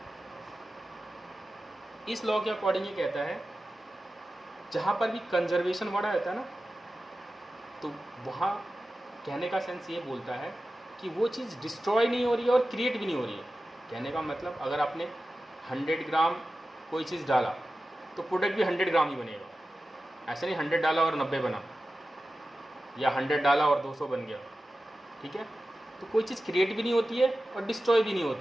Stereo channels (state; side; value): normal; both; correlation 0.94